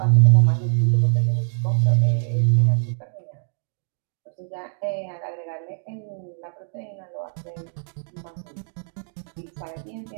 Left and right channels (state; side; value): silent; left; digital silence